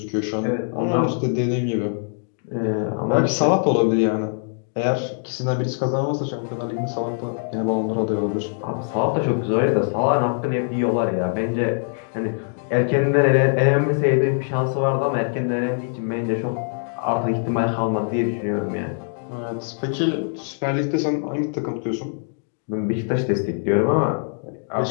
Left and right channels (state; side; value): silent; right; digital silence